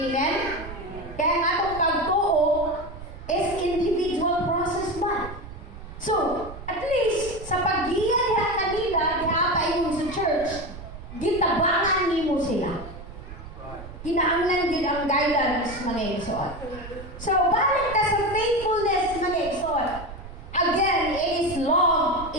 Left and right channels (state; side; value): noise; right; rumble, 13 dB below the sound